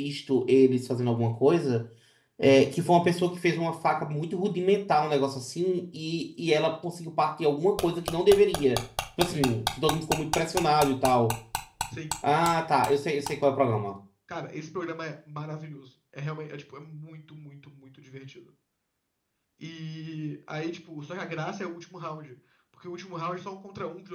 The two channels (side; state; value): both; identical; correlation 1.00